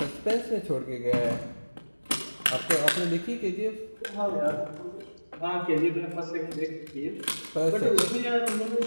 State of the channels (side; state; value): both; inverted; correlation -1.00